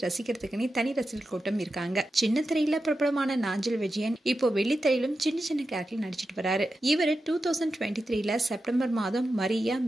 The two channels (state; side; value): normal; both; correlation 0.90